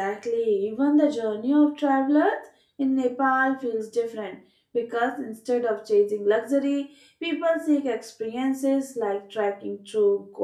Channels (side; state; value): both; identical; correlation 1.00